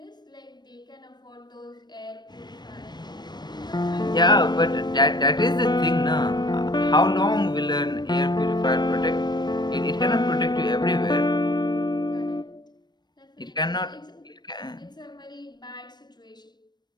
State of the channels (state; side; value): late; right; 0.21 ms